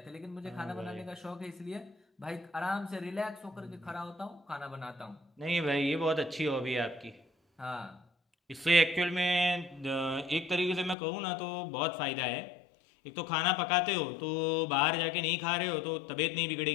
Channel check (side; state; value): right; drops out; at 11.0 s